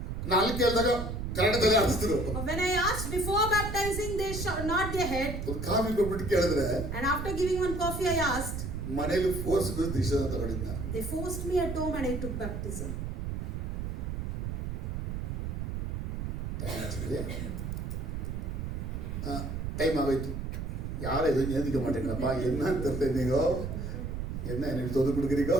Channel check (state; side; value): noise; right; rumble, 4 dB below the sound